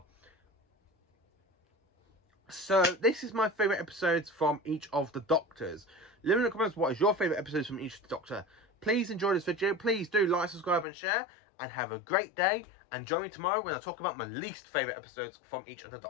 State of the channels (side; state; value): right; drops out; at 10.9 s